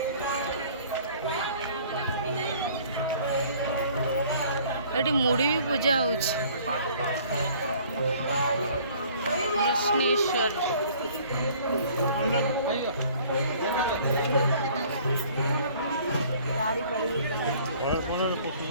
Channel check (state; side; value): inverted; both; correlation -0.54